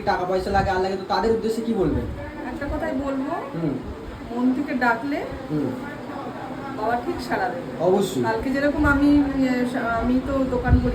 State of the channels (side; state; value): both; identical; correlation 1.00